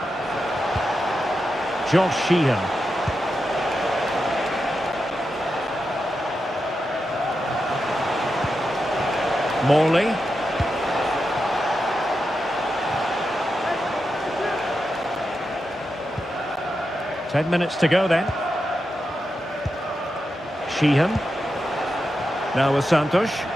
Josh Sheehan. Morley. Ten minutes to go then. Sheehan. Now with Santos.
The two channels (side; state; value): both; normal; correlation 0.88